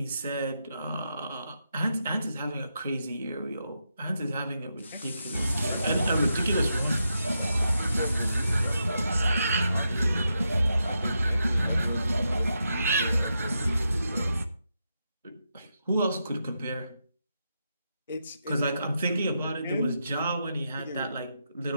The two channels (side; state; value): both; inverted; correlation -0.84